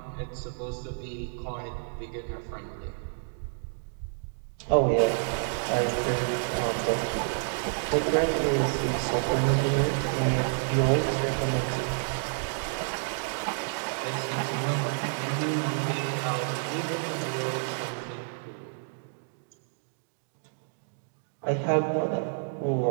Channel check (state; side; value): silent; left; digital silence